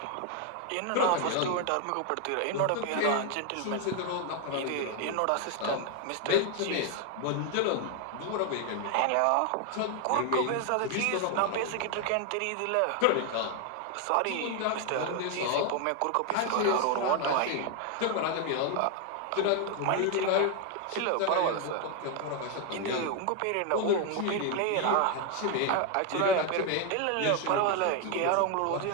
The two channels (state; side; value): different; both; correlation 0.01